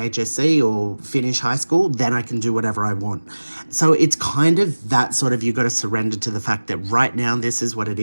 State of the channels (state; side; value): inverted; both; correlation -1.00